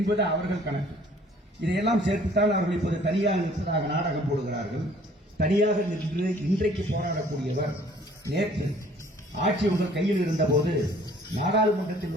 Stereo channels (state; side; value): normal; both; correlation 0.56